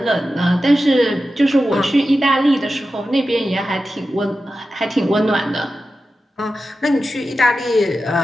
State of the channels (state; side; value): normal; both; correlation 0.92